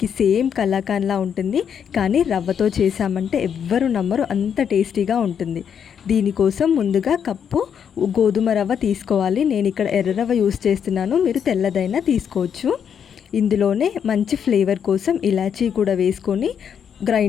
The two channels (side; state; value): right; quieter; 7.9 dB